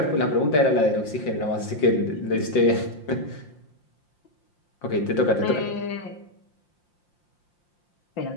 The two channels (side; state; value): right; late; 5.7 ms